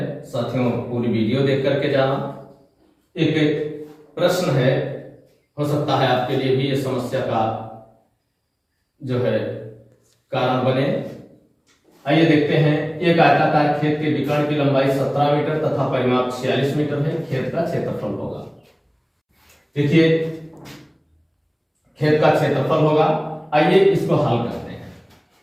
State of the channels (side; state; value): both; identical; correlation 1.00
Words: साथियों, पूरी वीडियो देख करके जाना। एक प्रश्न है, हो सकता है आपके लिए भी ये समस्या का जो है कारण बने। आइए देखते हैं। एक आयताकार खेत के विकर्ण की लंबाई 17 मीटर तथा परिमाप 46 मीटर है। खेत का क्षेत्रफल होगा। देखिए, खेत का क्षेत्रफल होगा। आइए इसको हल करते हैं।